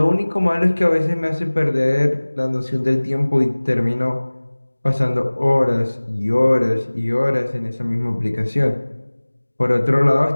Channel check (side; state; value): both; inverted; correlation -1.00